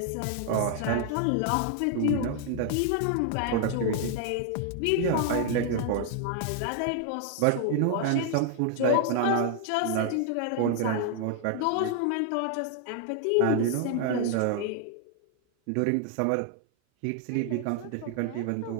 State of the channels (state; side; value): different; both; correlation 0.00